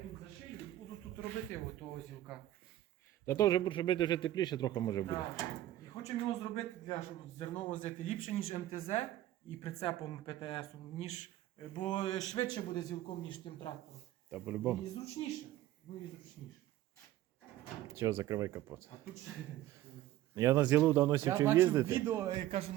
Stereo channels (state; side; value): quieter; left; 14.2 dB